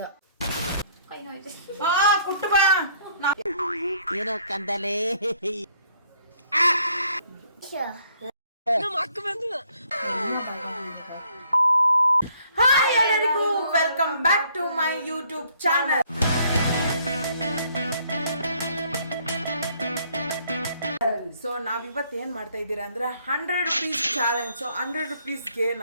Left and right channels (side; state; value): both; inverted; correlation -0.65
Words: ಕುಟ್ಟು ಬಾ ಏನೋ ಕಂದಲೆ ಹಾಯ್ ಎಲ್ಲರಿಗೂ welcome back to my YouTube channel. So ನಾವಿವತ್ತು ಏನು ಮಾಡ್ತಾ ಇದ್ದೀರಾ ಅಂದ್ರೆ 100 ರುಪೀಸ್ ಚಾಲೆಂಜ್. ಸೊ 100 ರುಪೀಸ್ಗೆ